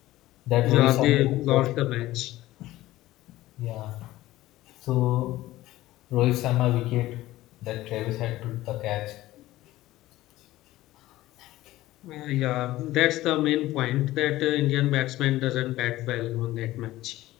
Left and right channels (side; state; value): right; quieter; 16.4 dB